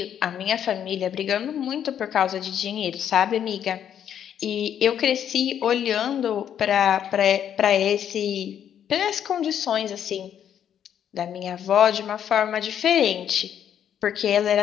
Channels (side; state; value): right; quieter; 9.4 dB